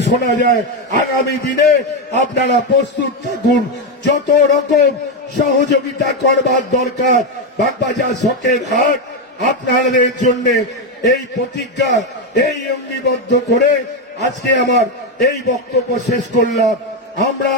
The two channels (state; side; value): normal; both; correlation 0.08